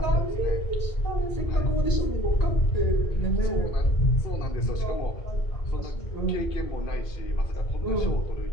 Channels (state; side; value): late; right; 2.5 ms